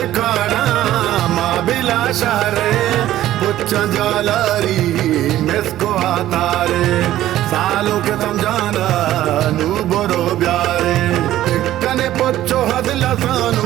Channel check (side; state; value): left; quieter; 13.7 dB